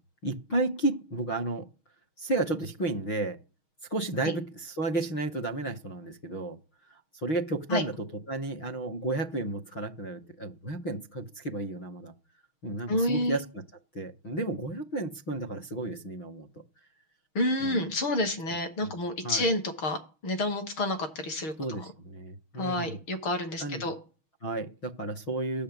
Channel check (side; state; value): right; late; 6.3 ms